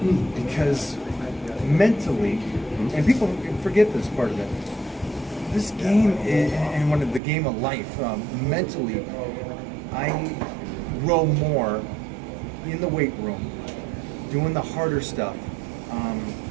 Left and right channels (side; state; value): left; drops out; at 7.2 s